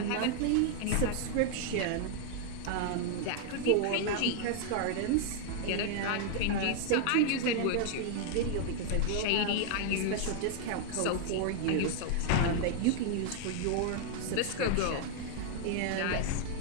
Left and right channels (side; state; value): both; different; correlation 0.00